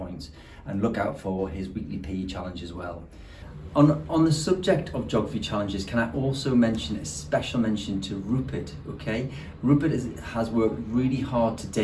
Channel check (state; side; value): identical; both; correlation 1.00